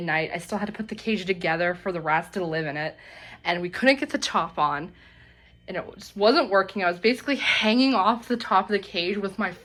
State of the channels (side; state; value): both; identical; correlation 1.00